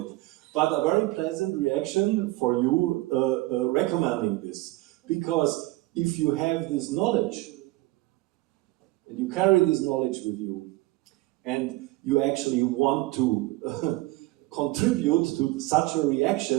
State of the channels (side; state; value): left; quieter; 19.6 dB